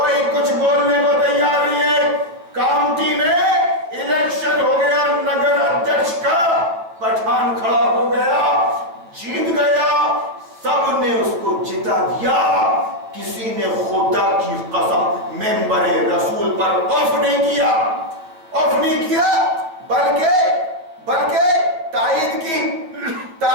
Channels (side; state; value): left; late; 9.4 ms